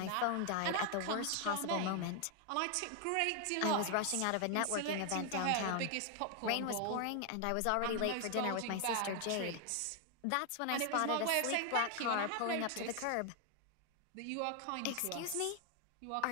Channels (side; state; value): both; different; correlation 0.00